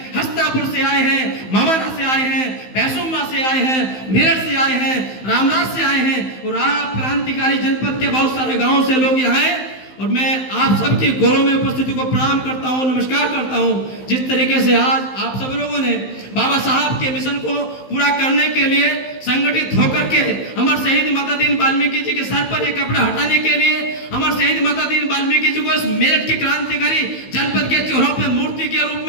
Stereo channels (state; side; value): late; right; 15 ms